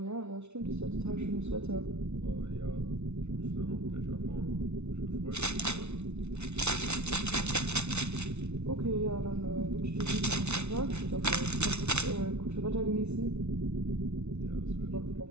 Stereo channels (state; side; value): late; left; 0.81 ms